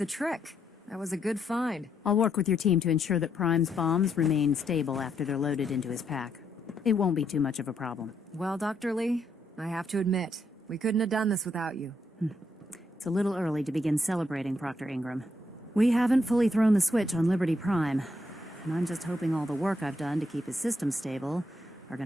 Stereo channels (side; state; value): both; normal; correlation 0.76